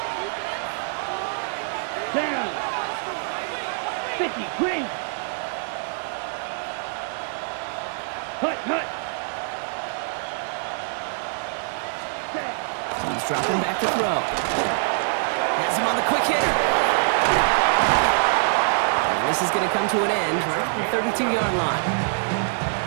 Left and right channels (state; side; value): silent; left; digital silence